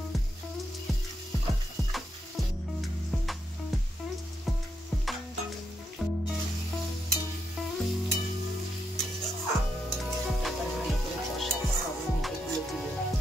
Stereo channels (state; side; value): normal; both; correlation 0.82